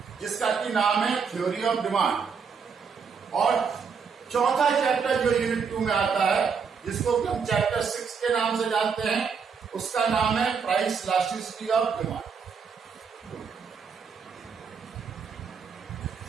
जिसका की नाम है थ्योरी ऑफ डिमांड, और चौथा चैप्टर जो यूनिट 2 में आता है, जिसको हम चैप्टर 6 के नाम से जानते हैं, उसका नाम है प्राइस इलास्टिसिटी ऑफ डिमांड।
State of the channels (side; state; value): left; quieter; 6.0 dB